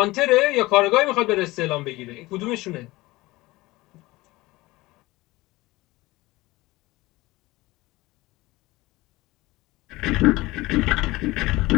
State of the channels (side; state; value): right; quieter; 20.0 dB